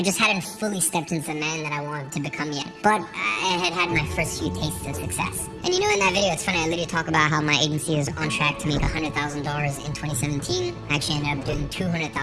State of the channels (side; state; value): both; identical; correlation 1.00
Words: just hadn't fully stepped into the man that I wanted to become yet. But I had my first few tastes of success. And you know, in that video, it's funny, I literally talk about how my agency is on track to make $100,000 in 2017. I actually ended up doing